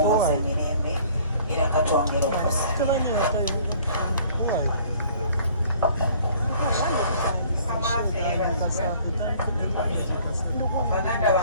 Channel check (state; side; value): inverted; both; correlation -0.55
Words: mirembe era katwongera okusa. Baganda